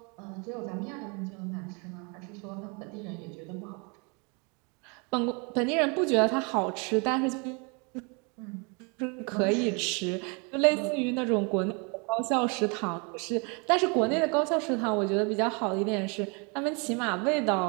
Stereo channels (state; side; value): quieter; left; 32.7 dB